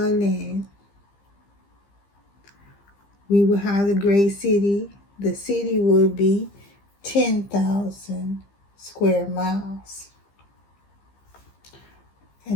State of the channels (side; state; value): right; late; 15 ms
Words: land. We will have the great city. The city will be 10,000 square miles.